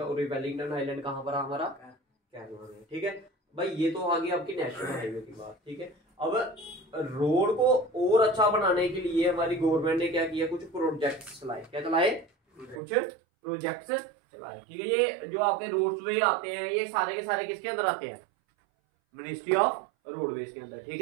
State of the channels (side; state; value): left; drops out; at 12.8 s